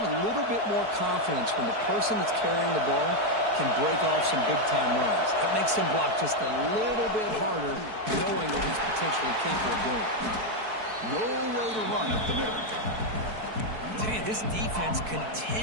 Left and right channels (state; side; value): late; left; 4.6 ms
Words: little bit more confidence when the person that's carrying the ball can break off some big-time runs. That makes him block just a little bit harder, knowing what he's potentially capable of doing. Nowhere to run up the middle. I tell you, this defense